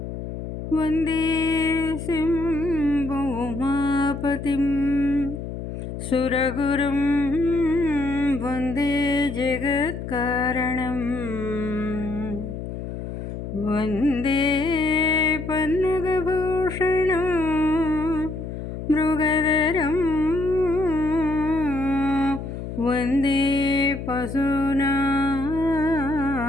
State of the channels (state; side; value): noise; left; hum, 7 dB below the sound